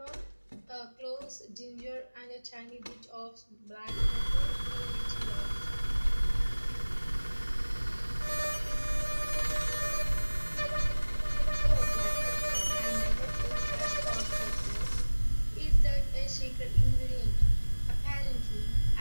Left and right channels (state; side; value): inverted; both; correlation -1.00